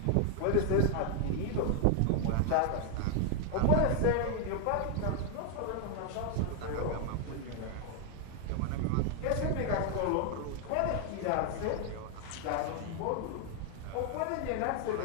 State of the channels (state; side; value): different; both; correlation 0.00